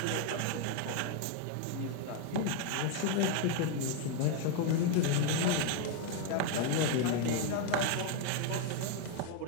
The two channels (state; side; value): different; both; correlation 0.01